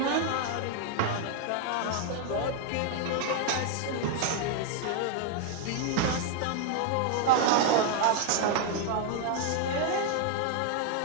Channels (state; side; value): different; both; correlation 0.00